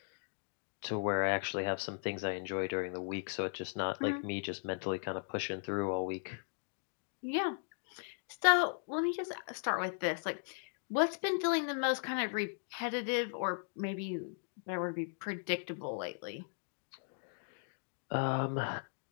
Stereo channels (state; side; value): silent; right; digital silence